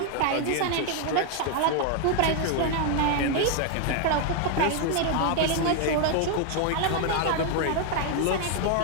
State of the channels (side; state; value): both; different; correlation 0.00